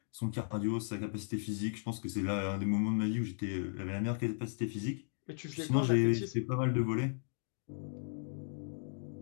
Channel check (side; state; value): right; silent; digital silence